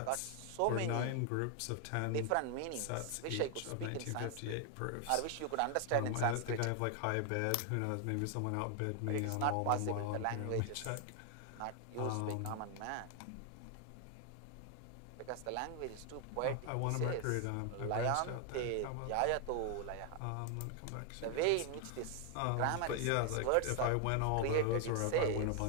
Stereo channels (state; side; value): different; both; correlation 0.00